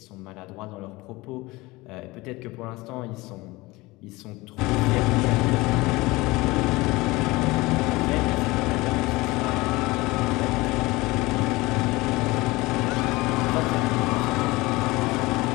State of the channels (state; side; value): quieter; right; 21.5 dB